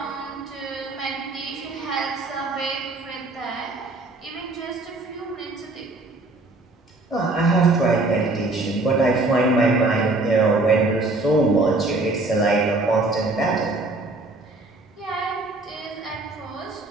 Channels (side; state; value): left; quieter; 3.1 dB